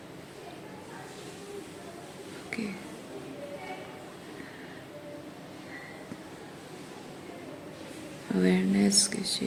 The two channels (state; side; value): identical; both; correlation 1.00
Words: ओके, अवेयरनेस किस